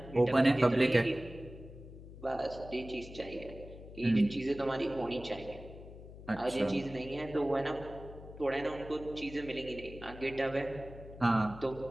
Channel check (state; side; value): noise; left; hum, 15 dB below the sound